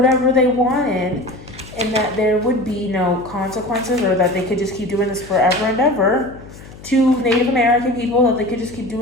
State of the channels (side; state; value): left; noise; hum, 18 dB below the sound